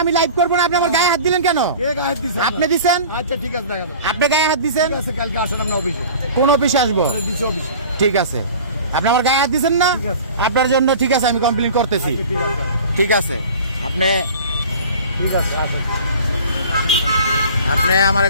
আমি লাইভ করবো না, আপনি আমার গায়ে হাত দিলেন কেন? কে গায়ে হাত দিছে? আপনি দিছেন, আচ্ছা ঠিক আছে, দেখাবো। আপনি গায়ে হাত দিছেন। ঠিক আছে, কালকে আসেন আমরা অফিসে। কোন অফিসে আসবো? দিছে অফিসে। ঠিক আছে, আপনি আমার গায়ে হাত দিছেন না? ঠিক আছে। আপনার জন্য ঠিক আছে, আমি কমপ্লেন করতেছি। ঠিক আছে, ঠিক আছে, আপনি ঠিক আছে, আসেন। আপনি আমার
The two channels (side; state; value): both; inverted; correlation -0.42